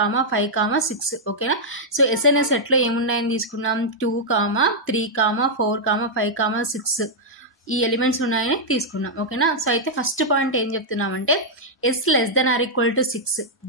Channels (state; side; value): normal; both; correlation -0.06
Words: 5, 6. ఓకేనా? So S అనే set లో ఏమున్నాయని తీసుకున్నాం? 2, 3, 4, 5, 6 ఈ elements ఉన్నాయని తీసుకున్నాం. ఓకేనా? సో అయితే ఫస్ట్ పాయింట్ ఏం చెప్తున్నామంటే S less than or equal to 6,